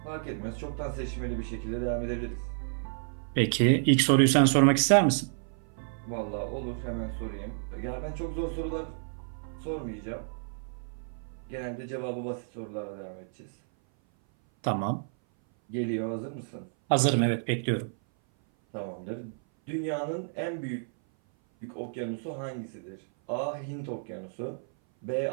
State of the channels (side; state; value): left; silent; 56 dB below the other